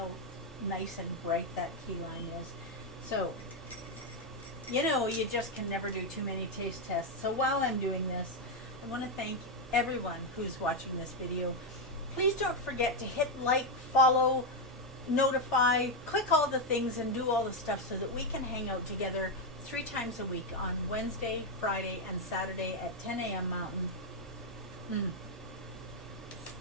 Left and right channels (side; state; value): both; normal; correlation 0.03